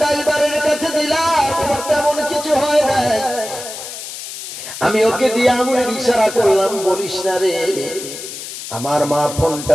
ড্রাইভারের কাছে দিলাম, তেমন কিছু হয় না। আমি ওকে দিয়ে আঙুলের ইশারা করলাম, বলিস না রে। আমার মা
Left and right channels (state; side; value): noise; left; hiss, 10 dB below the sound